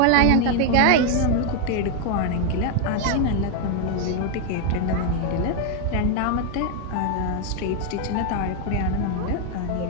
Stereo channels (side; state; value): both; different; correlation 0.00